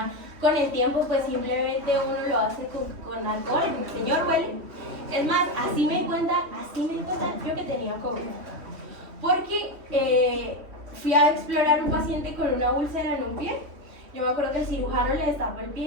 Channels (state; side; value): late; left; 3.1 ms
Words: con el tiempo pues simplemente uno lo hace con alcohol, el señor huele. Es más, así me di cuenta yo que tenía COVID. Porque fui a explorar un paciente con una úlcera en un pie. Yo me acuerdo que el cirujano le destapó el pie